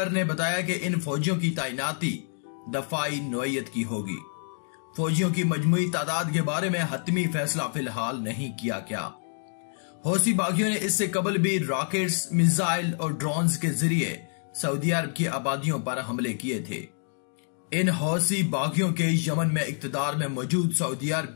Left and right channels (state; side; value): silent; right; digital silence